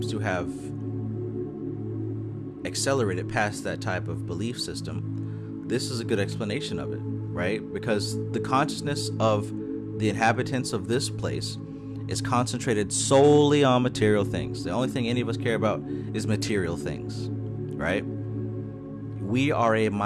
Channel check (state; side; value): identical; both; correlation 1.00